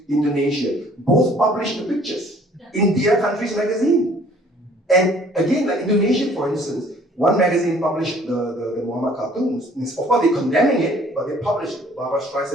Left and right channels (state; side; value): normal; both; correlation 0.56